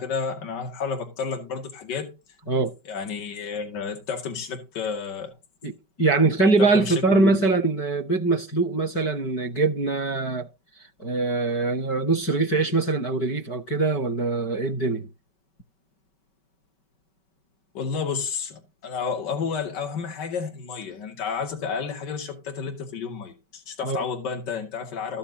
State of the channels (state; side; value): late; right; 5.3 ms